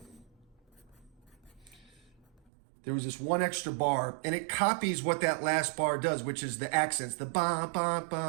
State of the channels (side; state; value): left; drops out; at 2.4 s